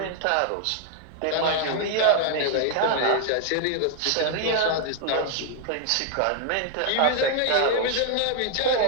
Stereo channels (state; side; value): different; both; correlation 0.00